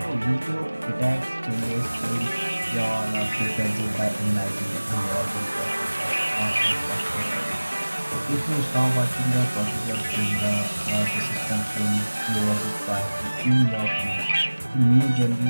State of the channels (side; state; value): both; inverted; correlation -1.00